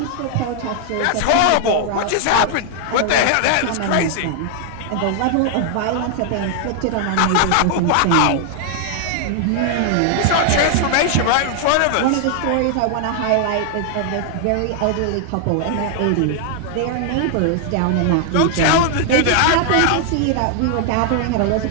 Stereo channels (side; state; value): both; different; correlation 0.00